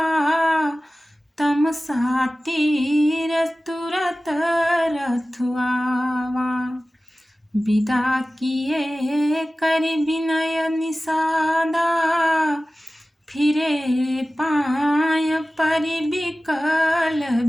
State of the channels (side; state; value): both; normal; correlation 0.96